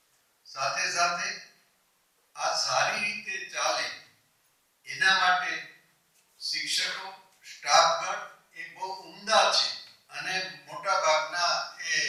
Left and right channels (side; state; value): both; identical; correlation 1.00